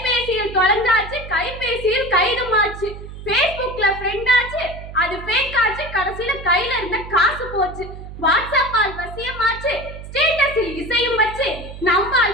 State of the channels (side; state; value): right; noise; hum, 12 dB below the sound